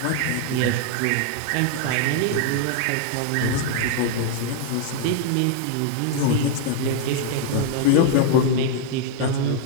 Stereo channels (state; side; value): different; both; correlation 0.00